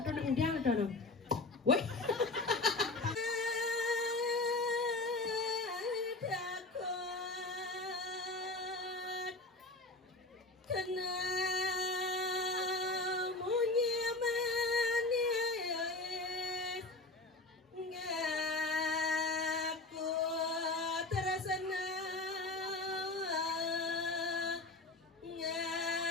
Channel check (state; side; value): quieter; right; 3.1 dB